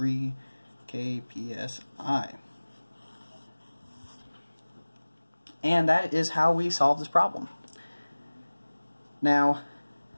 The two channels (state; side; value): inverted; both; correlation -1.00